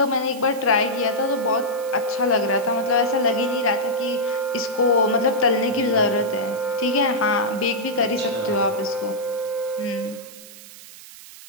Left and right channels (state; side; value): noise; right; hiss, 18 dB below the sound